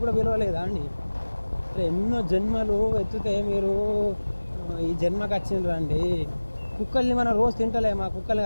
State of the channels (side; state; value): both; inverted; correlation -1.00